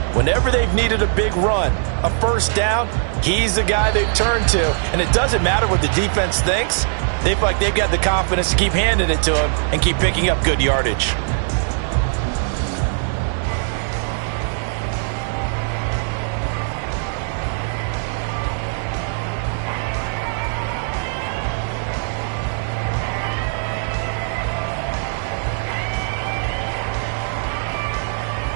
Whenever they've needed a big run, a first down, he's the guy they've turned to. And it doesn't matter what the defense thinks. They feel like they've got the confidence to keep handing it to him and keep picking up good yardage.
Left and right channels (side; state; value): left; silent; 56 dB below the other